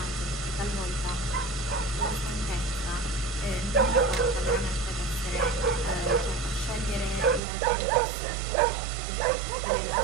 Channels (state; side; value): drops out; left; at 7.4 s